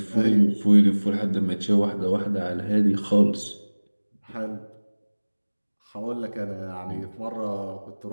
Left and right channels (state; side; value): inverted; both; correlation -1.00